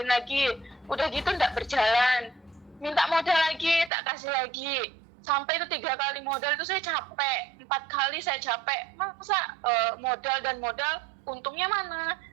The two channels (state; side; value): drops out; left; at 3.9 s